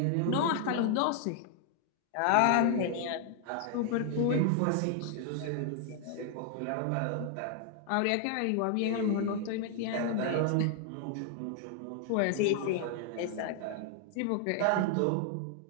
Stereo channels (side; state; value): both; different; correlation 0.00